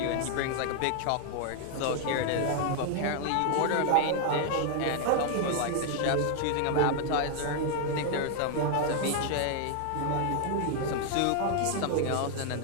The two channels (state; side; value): different; both; correlation 0.00